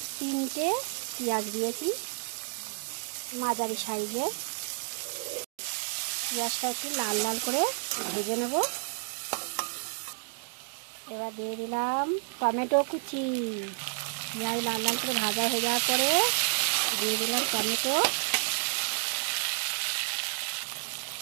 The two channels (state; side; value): silent; left; digital silence